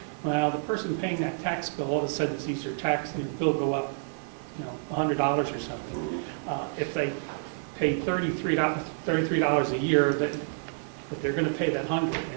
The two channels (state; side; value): silent; left; 59 dB below the other